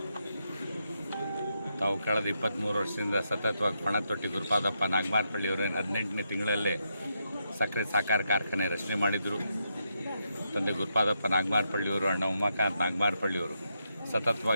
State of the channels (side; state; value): both; inverted; correlation -0.82